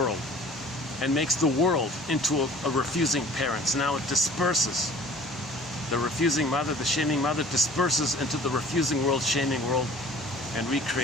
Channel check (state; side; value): normal; both; correlation 0.48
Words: and makes the world into a refusing parent. So now it disperses. The refusing mother, the shaming mother, disperses into the refusing world, shaming world, and